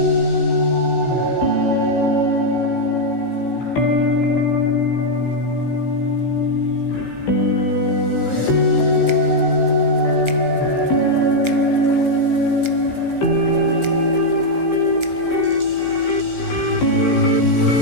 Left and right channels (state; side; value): late; right; 16 ms